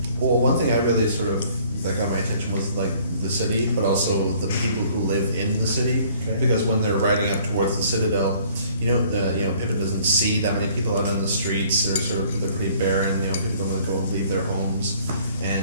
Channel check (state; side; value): inverted; both; correlation -0.57